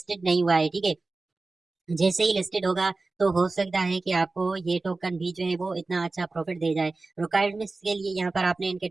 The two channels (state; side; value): quieter; left; 3.5 dB